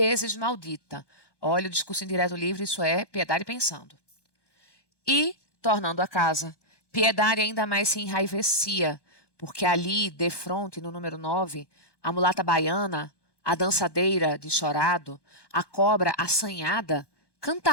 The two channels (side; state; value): right; late; 1.2 ms